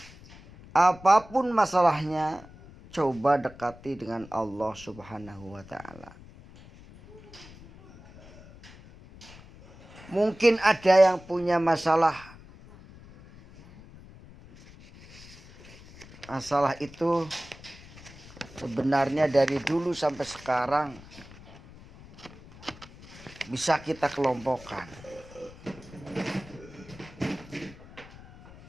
Apapun masalahnya, coba dekati dengan Allah Subhanahu wa taala. Mungkin ada yang punya masalah. Masalah itu sebenarnya dari dulu sampai sekarang bisa kita kelompokkan.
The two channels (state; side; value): noise; left; rumble, 20 dB below the sound